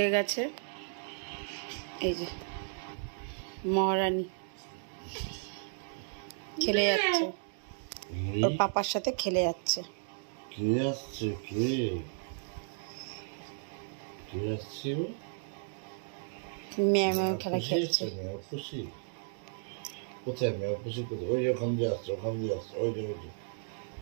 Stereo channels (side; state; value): left; silent; digital silence